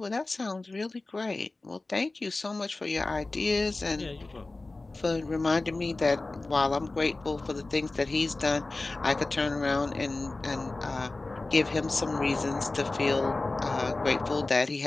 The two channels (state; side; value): quieter; right; 3.2 dB